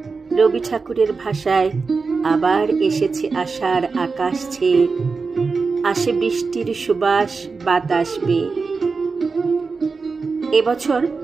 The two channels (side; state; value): left; quieter; 4.5 dB